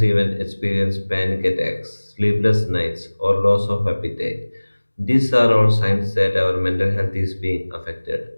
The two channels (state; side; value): inverted; both; correlation -1.00